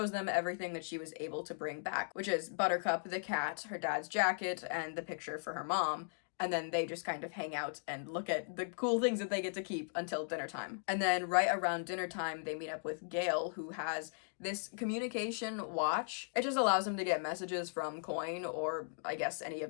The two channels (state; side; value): silent; right; digital silence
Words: them everything that she was able to bring back, which is Buttercup the cat, her dad's jacket, and the picture for her mom. And then they just kind of hang out and look at the cool things that they get to keep until dinner time. And then right around dinner time, they meet up with Gale, who has this communication watch. It just allows him to get messages from Coin or I guess any